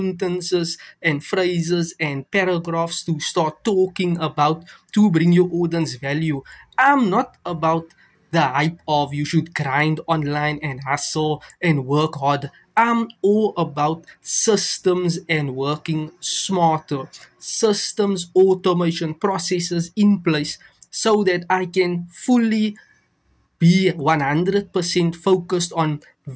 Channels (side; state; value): both; identical; correlation 1.00